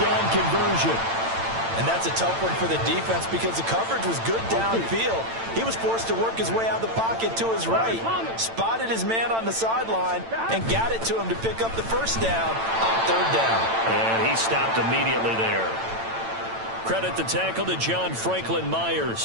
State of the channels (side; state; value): left; late; 8.9 ms